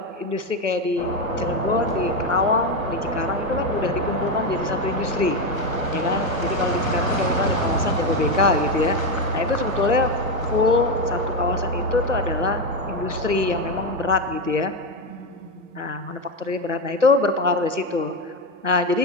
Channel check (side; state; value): left; late; 1.0 ms